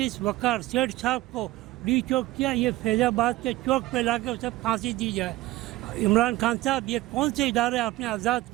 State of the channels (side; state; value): left; quieter; 17.8 dB